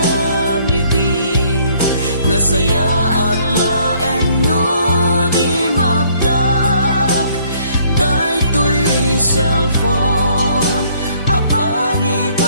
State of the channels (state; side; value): inverted; both; correlation -0.63